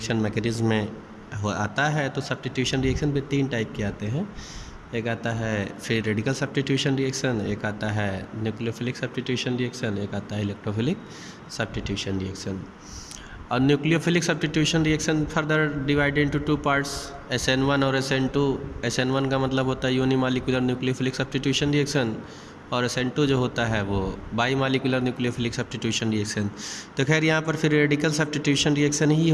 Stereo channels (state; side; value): identical; both; correlation 1.00